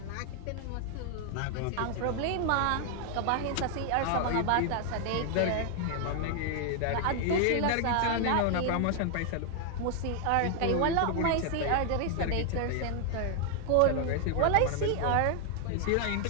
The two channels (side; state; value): both; different; correlation 0.00